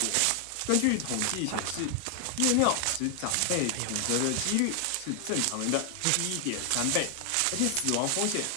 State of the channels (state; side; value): different; both; correlation 0.00